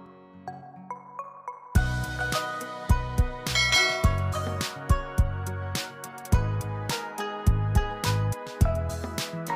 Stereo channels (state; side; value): identical; both; correlation 1.00